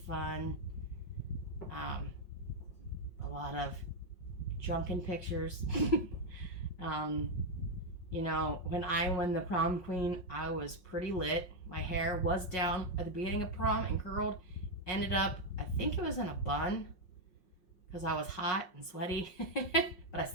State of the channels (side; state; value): right; late; 5.5 ms